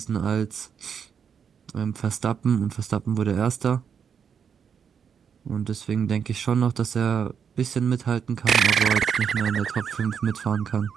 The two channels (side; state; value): left; quieter; 7.2 dB